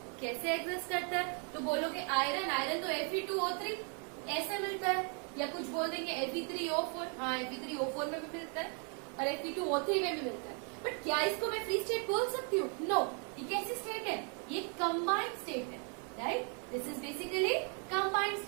कैसे एग्जिस्ट करता है, तो बोलोगे आयरन तो Fe2O3 ऐसे मिलता है, या कुछ बोल देंगे Fe3O4, हाँ Fe3O4 में भी मिलता है और Fe2O3 में भी मिलता है। बट क्या इसको मैं फ्री स्टेट बोल सकती हूँ? नो। ये कैसी स्टेट है? ये कंबाइंड स्टेट है, right. This is basically combined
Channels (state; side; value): quieter; left; 39.7 dB